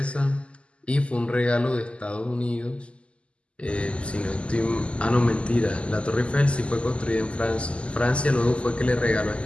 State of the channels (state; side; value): late; right; 0.055 ms